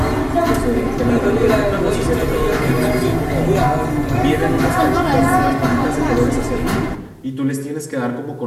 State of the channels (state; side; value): identical; both; correlation 1.00